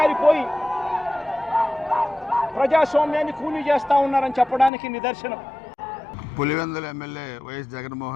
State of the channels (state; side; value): drops out; right; at 4.7 s